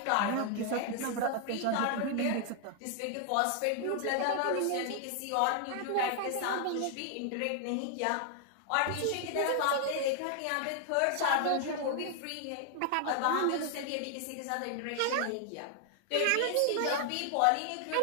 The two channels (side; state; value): both; different; correlation 0.00